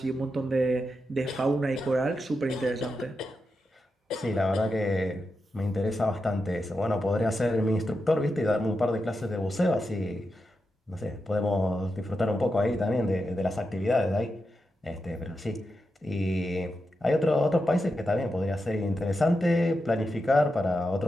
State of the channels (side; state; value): both; normal; correlation 0.88